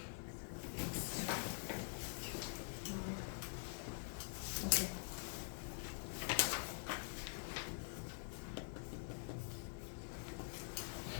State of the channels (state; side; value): silent; right; digital silence